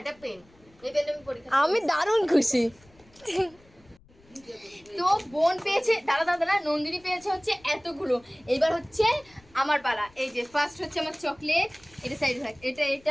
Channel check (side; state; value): left; noise; rumble, 29 dB below the sound